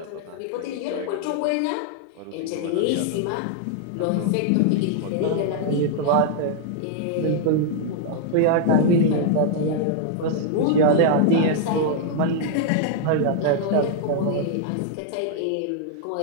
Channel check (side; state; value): both; different; correlation 0.00